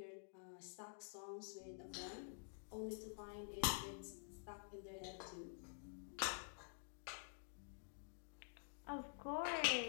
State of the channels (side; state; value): right; silent; digital silence